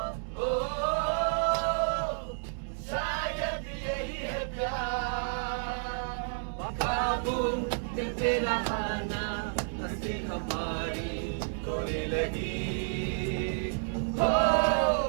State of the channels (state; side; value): silent; left; digital silence